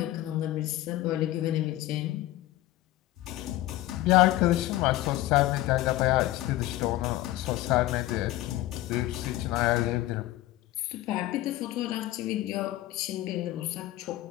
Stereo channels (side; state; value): right; quieter; 16.1 dB